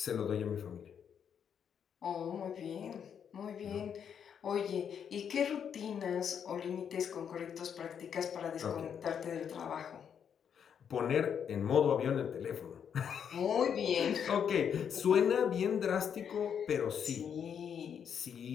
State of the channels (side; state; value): right; quieter; 7.9 dB